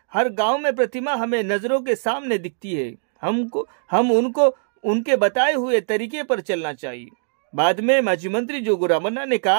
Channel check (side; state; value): left; silent; 61 dB below the other